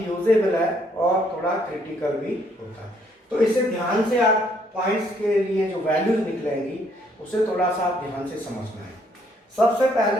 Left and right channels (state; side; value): normal; both; correlation 0.68